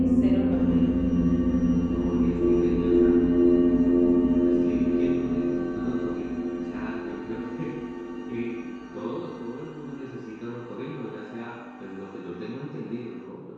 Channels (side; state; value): both; identical; correlation 1.00